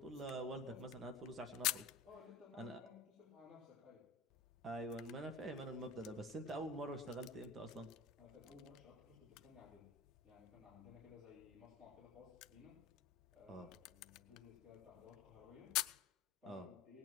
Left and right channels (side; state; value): right; quieter; 4.3 dB